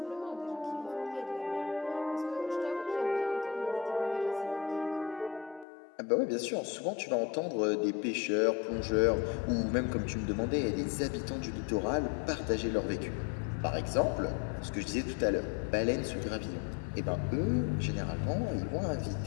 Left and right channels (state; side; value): drops out; right; at 5.7 s